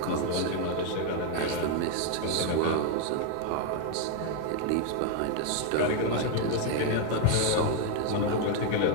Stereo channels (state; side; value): different; both; correlation 0.01